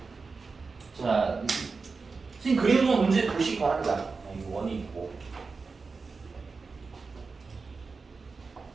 자, 선생님 그리는 건 문제 보시기 바랍니다. 이거 원이 있고.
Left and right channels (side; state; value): left; quieter; 4.4 dB